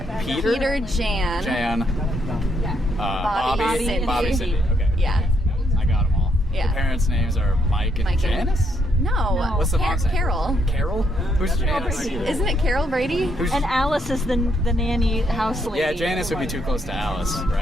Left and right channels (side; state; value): both; normal; correlation 0.74